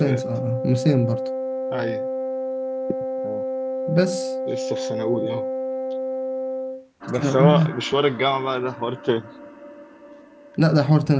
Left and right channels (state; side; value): identical; both; correlation 1.00